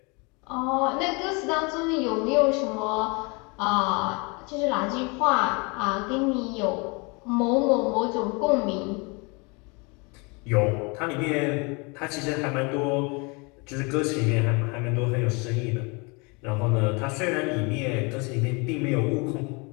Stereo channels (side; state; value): right; quieter; 29.9 dB